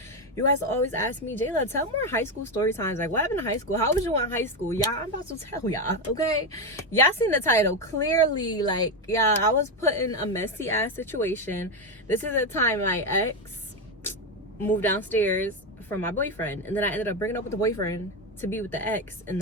you guys always ask me, Jaelah, tell more high school story times. Like, what happened in high school? How was you in high school? Yeah, I'm about to tell y'all, okay? Y'all seen the title. Clearly, like, yeah, I was put in a messy ass situation. This is the time my ex moved downstairs from my boyfriend, and then I ended up bringing up with the boyfriend to be with the ex in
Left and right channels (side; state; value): both; normal; correlation 0.10